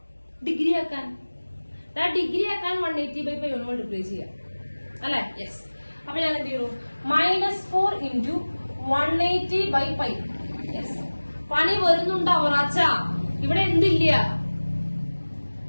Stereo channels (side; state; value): both; inverted; correlation -1.00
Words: ഡിഗ്രി ആക്കാൻ. ഡിഗ്രി ആക്കാൻ 180/π കൊണ്ട് മൾട്ടിപ്ലൈ ചെയ്യാം അല്ലെ. യെസ്. അപ്പൊ ഞാൻ എന്ത് ചെയ്യുന്നു, -4 × 180/π. യെസ്, പണി വരുന്നുണ്ടോ അവറാച്ച? ഇവിടെ എന്തില്ല?